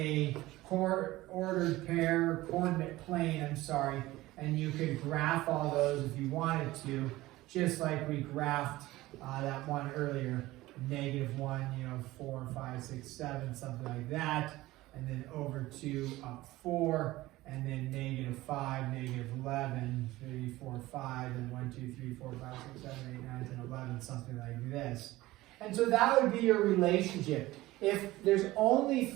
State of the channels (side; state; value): left; quieter; 17.9 dB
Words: ordered pair, coordinate plane, and you could graph all those if you wanted to, just like we graphed that one earlier, -1, 4, 5, 6, 7, something like that, and then over to 4, and then -5, -11, 3, 4, 5, and 1, 2, 3, 4, 5, 6, 7, 8, 9, 10, 11, something like this. And so that would be your relationship. if there's only